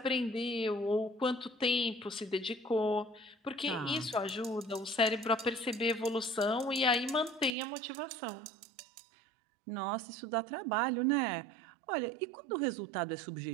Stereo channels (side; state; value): left; drops out; at 7.5 s